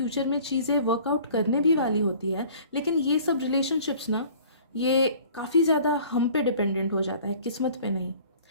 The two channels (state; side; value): inverted; both; correlation -0.49